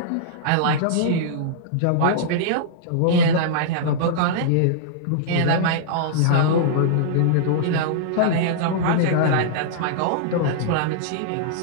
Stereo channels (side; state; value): both; different; correlation -0.02